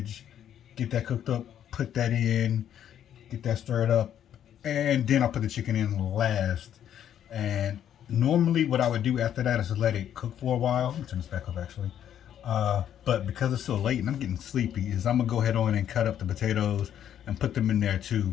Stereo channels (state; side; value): quieter; right; 10.1 dB